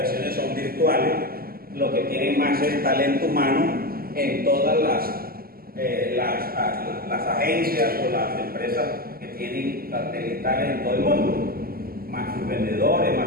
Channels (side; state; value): left; late; 0.43 ms